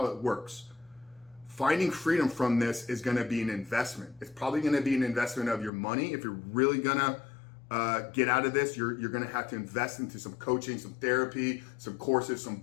it works. Finding freedom from this is going to be an investment. It's probably going to be an investment of your money. If you're really going to get out of this, you're going to have to invest into some coaching, some therapy, some courses, some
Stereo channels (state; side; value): drops out; right; at 5.7 s